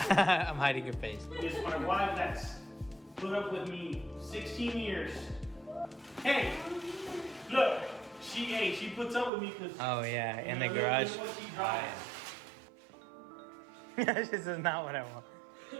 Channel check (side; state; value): left; drops out; at 9.3 s